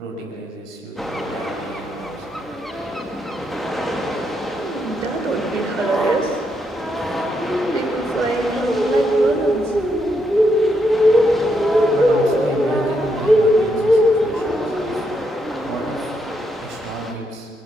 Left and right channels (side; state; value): both; normal; correlation 0.79